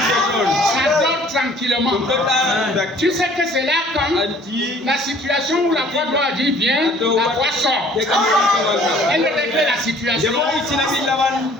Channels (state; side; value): normal; both; correlation 0.55